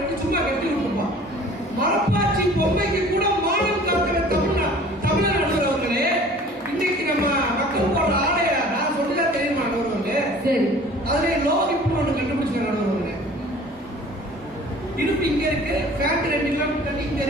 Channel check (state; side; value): normal; both; correlation 0.47